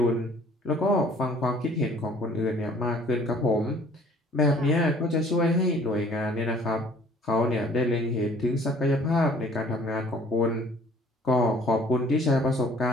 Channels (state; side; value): normal; both; correlation 0.54